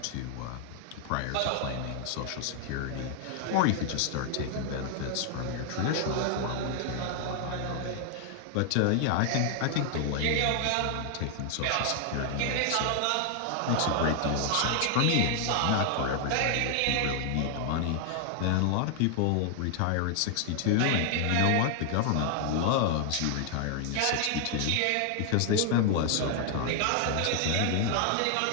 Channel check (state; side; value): different; both; correlation 0.00